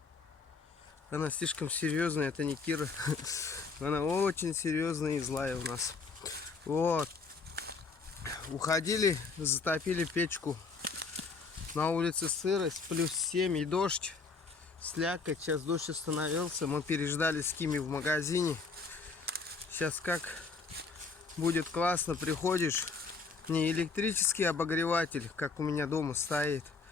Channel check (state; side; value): quieter; right; 4.5 dB